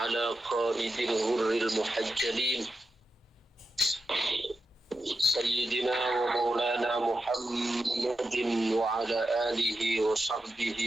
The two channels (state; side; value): normal; both; correlation 0.89